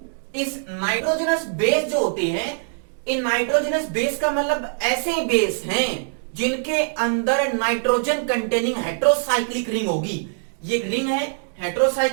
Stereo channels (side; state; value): left; silent; digital silence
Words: इस नाइट्रोजनस बेस जो होते हैं, इन नाइट्रोजनस बेस का मतलब ऐसे बेस हैं जिनके अंदर नाइट्रोजन कंटेनिंग हेट्रोसाइक्लिक रिंग होगी। ये रिंग है,